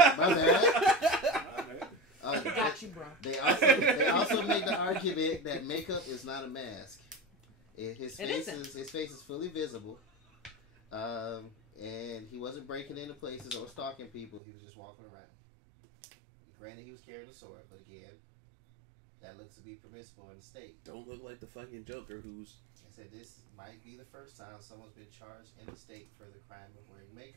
bad. Got you, bro. They also make the argument that makeup is not a mask. His face is fully visible, and he wasn't breaking into places or stalking people. He was just walking around. Granted, he was carrying a sword, but again, that looks to be permissible in the state. Don't look like the fucking Joker who's... I said this might be the first time someone's been charged in the state for the crime of wearing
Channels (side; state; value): left; drops out; at 14.4 s